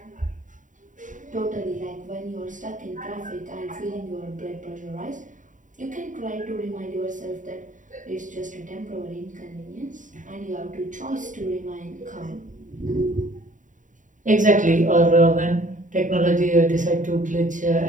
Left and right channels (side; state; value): left; late; 0.37 ms